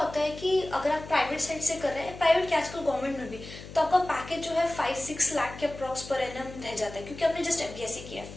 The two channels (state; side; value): noise; left; hum, 14 dB below the sound